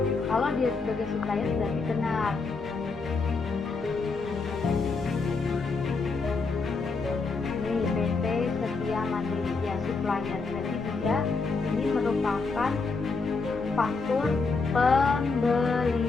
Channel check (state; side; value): quieter; right; 4.2 dB